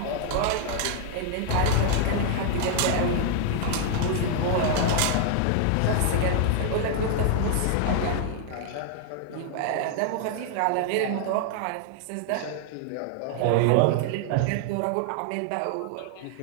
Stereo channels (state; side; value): different; both; correlation 0.00